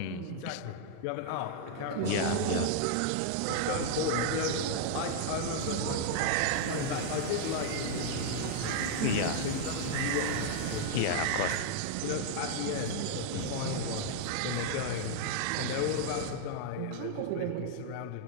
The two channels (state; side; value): different; both; correlation 0.00